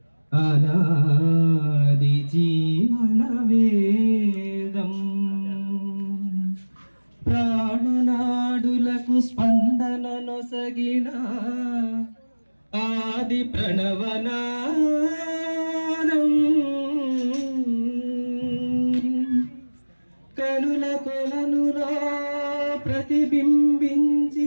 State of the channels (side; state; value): both; inverted; correlation -1.00